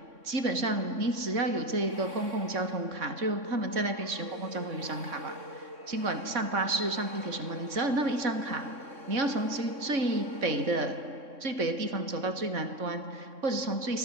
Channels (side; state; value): left; late; 3.6 ms